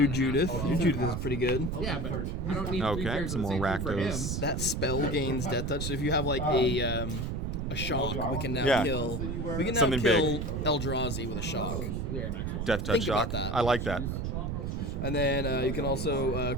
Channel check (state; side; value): noise; right; rumble, 2 dB below the sound